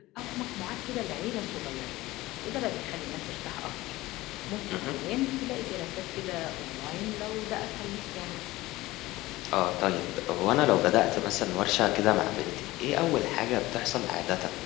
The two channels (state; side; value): quieter; right; 18.5 dB